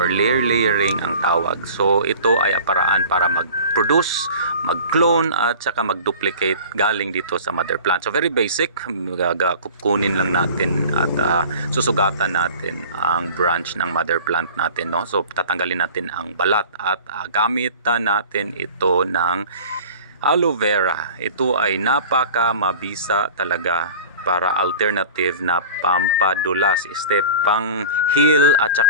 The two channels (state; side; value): inverted; both; correlation -0.40